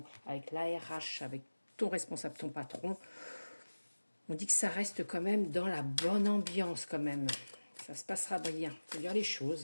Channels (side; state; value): both; inverted; correlation -1.00